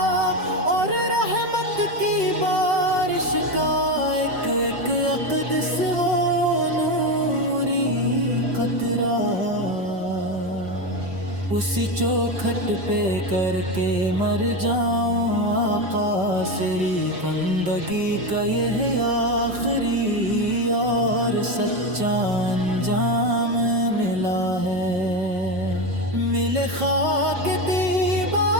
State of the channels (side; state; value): left; late; 5.3 ms